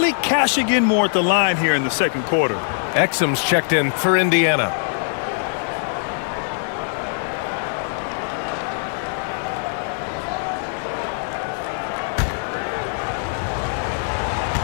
cashing in more at the line here in the second quarter. Exum's checked in for Indiana.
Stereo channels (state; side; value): silent; right; digital silence